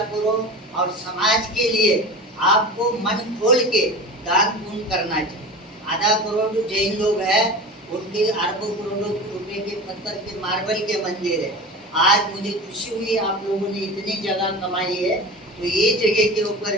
करो। और समाज के लिए आपको मन खोल के दान पुण्य करना चाहिए। आधा करोड़ जैन लोग हैं, उनके अरबों करोड़ों रुपए के पत्थर के मार्बल के मंदिर है। आज मुझे खुशी हुई आप लोगों ने इतनी जगह कमाई है, तो ये जगह के ऊपर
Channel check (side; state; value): both; normal; correlation 0.32